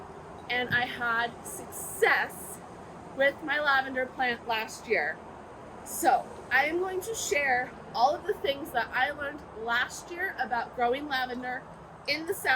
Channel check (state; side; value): identical; both; correlation 1.00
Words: and I had success with my lavender plant last year. So I am going to share all of the things that I learned last year about growing lavender in the